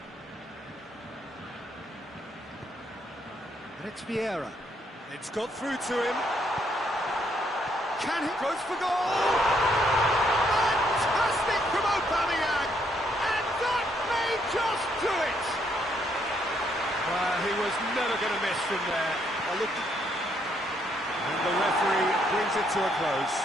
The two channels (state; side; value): normal; both; correlation 0.72